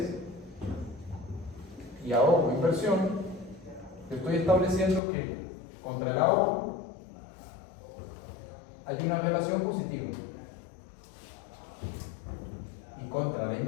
y ahorro, inversión, estoy estableciendo que contra el ahorro hay una relación positiva y contra la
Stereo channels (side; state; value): right; drops out; at 5.0 s